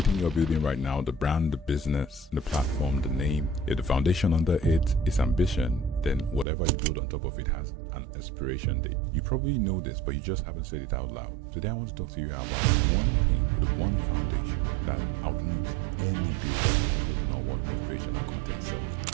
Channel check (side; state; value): left; drops out; at 6.5 s